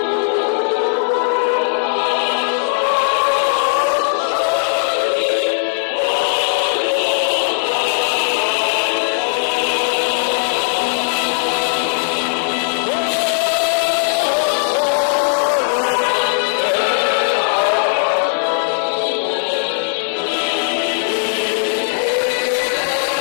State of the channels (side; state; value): right; silent; 62 dB below the other